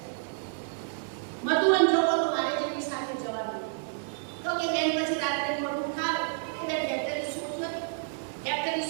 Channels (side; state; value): left; silent; 58 dB below the other